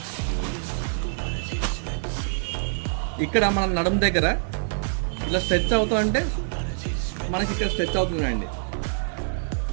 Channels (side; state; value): left; silent; digital silence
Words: ఇక్కడ మన నడుము దగ్గర ఇలా స్ట్రెచ్ అవుతా అంటే మనకి ఇక్కడ స్ట్రెచ్ అవుతుందండి.